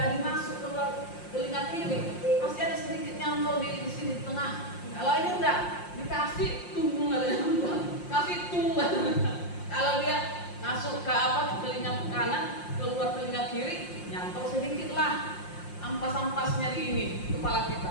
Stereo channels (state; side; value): late; right; 5.7 ms